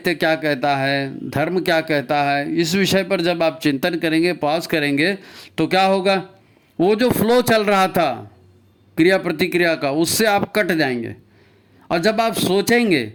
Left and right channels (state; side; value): identical; both; correlation 1.00